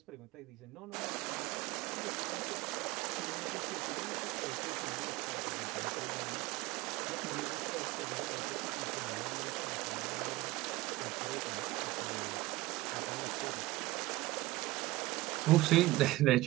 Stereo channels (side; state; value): left; quieter; 19.1 dB